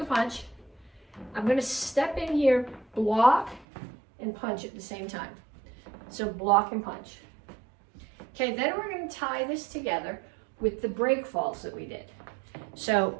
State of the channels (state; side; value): drops out; left; at 3.7 s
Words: punch. I'm going to step in here, block, and punch at the same time. So block and punch. Okay, then we're going to tie this together with the break falls that we did. So